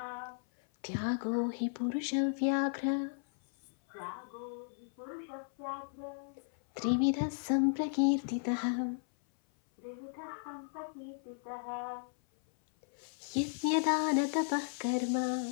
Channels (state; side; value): silent; right; 54 dB below the other